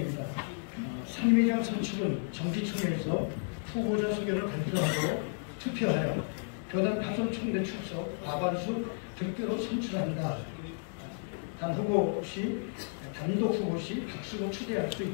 상임회장 선출은 정기총회에서 후보자 소견을 발표하고 투표하여 교단 파손 총대 출석 과반수 득표로 선출합니다. 단독 후보 시 박수로 추대할 수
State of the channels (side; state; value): right; silent; digital silence